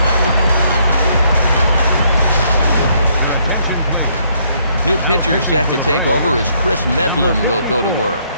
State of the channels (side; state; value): both; inverted; correlation -0.69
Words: New pitcher set to take over as Chris Medlin will go to work.